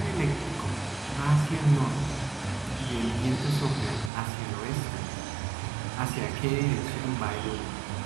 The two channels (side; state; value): left; drops out; at 4.1 s